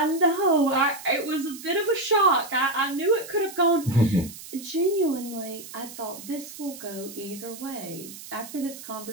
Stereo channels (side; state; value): right; noise; hiss, 14 dB below the sound